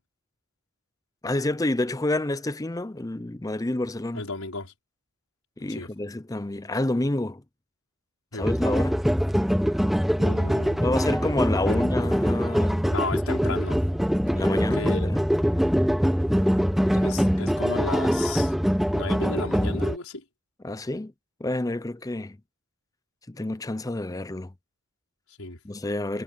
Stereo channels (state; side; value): normal; both; correlation 0.91